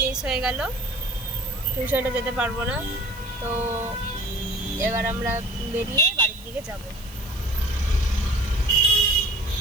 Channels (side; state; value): right; noise; hiss, 21 dB below the sound